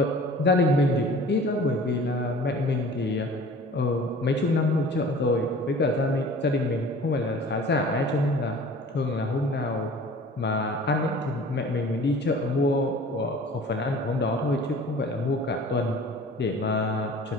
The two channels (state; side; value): normal; both; correlation 0.45